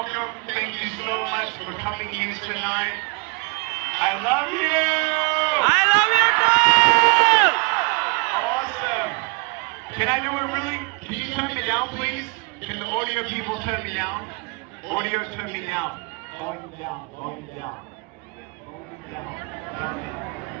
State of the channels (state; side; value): quieter; left; 31.3 dB